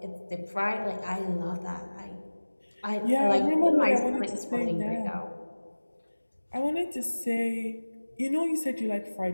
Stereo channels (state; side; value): inverted; both; correlation -1.00